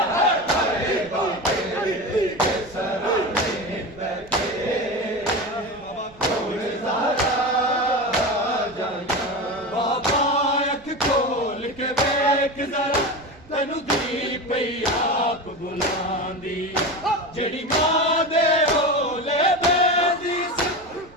ਤੈਨੂੰ ਦੀ ਪਈ ਆਪ ਬੁਲਾਉਂਦੀ ਜਿਹੜੀ ਮਾਂ ਦੇ ਓਲੇ ਬੈਂਦੀ ਸੀ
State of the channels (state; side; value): noise; right; rumble, 25 dB below the sound